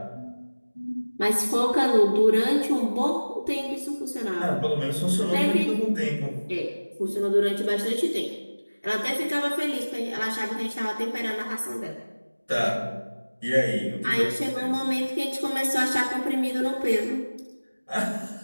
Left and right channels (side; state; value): both; inverted; correlation -1.00